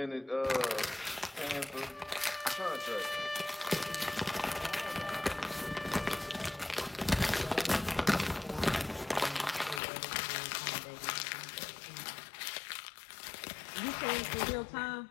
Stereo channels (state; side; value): drops out; right; at 9.8 s